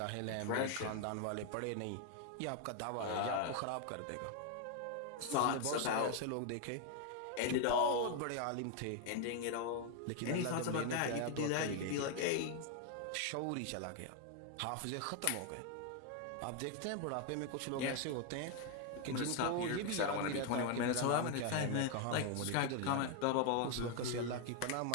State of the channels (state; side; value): different; both; correlation 0.01